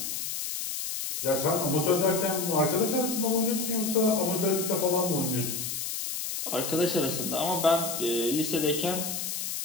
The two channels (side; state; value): left; noise; hiss, 4 dB below the sound